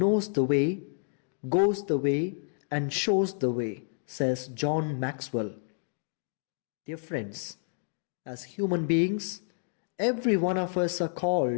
the way, goes the way, and shows the way, says John Maxwell. Dear friends, as human beings, every one of us are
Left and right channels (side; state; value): right; silent; digital silence